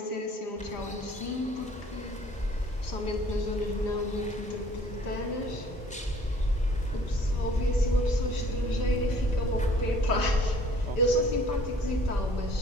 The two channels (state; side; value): normal; both; correlation 0.55